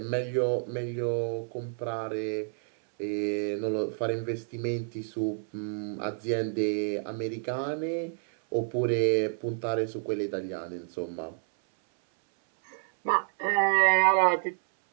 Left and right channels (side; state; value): left; silent; 58 dB below the other